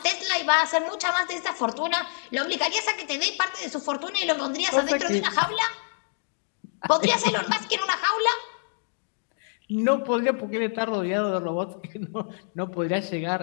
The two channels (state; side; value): silent; right; digital silence